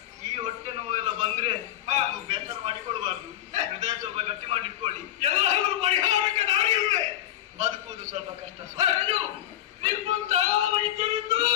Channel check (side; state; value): right; quieter; 13.0 dB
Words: ಈ ಹೊಟ್ಟೆ ನೋವೆಲ್ಲ ಬಂದ್ರೆ ಬೇಸರ ಮಾಡಿಕೊಳ್ಬಾರ್ದು, ಹೃದಯ ಸ್ವಲ್ಪ ಗಟ್ಟಿ ಮಾಡಿಟ್ಕೊಳ್ಳಿ. ಎಲ್ಲರೂ ಪರಿಹಾರಕ್ಕೆ ದಾರಿ ಇದೆ. ಬದುಕುವುದು ಸ್ವಲ್ಪ ಕಷ್ಟ. ನಿಮ್ಮಂತಹ ವೈದ್ಯರಿದ್ದು